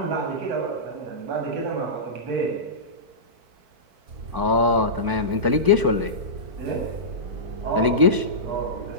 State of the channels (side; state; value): left; late; 4.5 ms